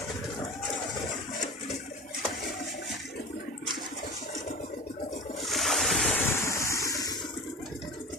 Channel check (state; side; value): normal; both; correlation 0.34